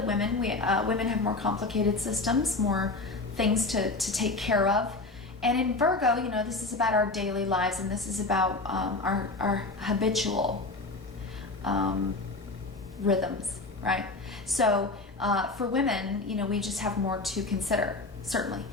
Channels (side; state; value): right; quieter; 3.3 dB